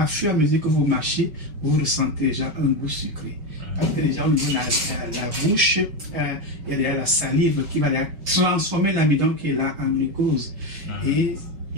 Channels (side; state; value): left; late; 5.8 ms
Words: fur et à mesure que vous mâchez, vous ressentez déjà un goût sucré. Parce que déjà au niveau de la bouche, il y a déjà la salive qui va transformer l'amidon qui est là en glucose. Et